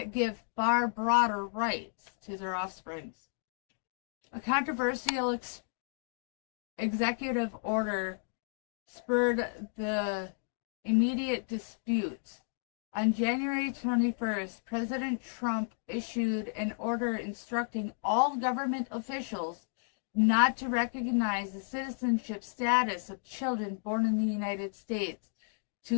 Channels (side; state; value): right; silent; digital silence